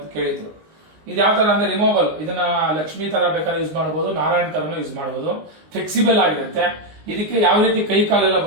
ಕೇಳಿದ್ರು. ಇದು ಯಾವ ಥರ ಅಂದರೆ ರಿಮೂವಬಲ್, ಇದನ್ನ ಲಕ್ಷ್ಮೀ ಥರ ಬೇಕಾದ್ರೆ ಯೂಸ್ ಮಾಡ್ಬೋದು, ನಾರಾಯಣ ಥರನೂ ಯೂಸ್ ಮಾಡ್ಬೋದು, ಫ್ಲೆಕ್ಸಿಬಲ್ ಆಗಿರುತ್ತೆ. ಇದಕ್ಕೆ ಯಾವ ರೀತಿ ಕೈ ಕಾಲೆಲ್ಲ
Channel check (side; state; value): left; late; 19 ms